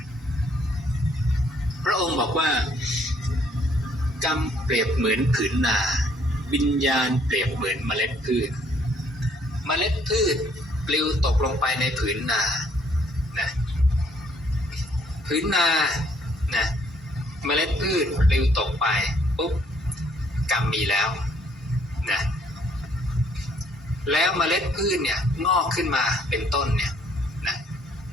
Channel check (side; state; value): both; normal; correlation 0.65